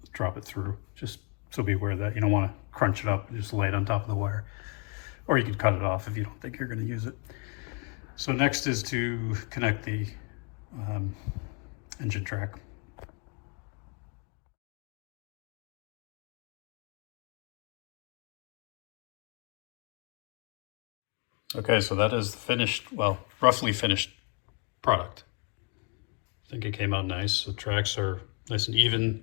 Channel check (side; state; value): right; quieter; 33.3 dB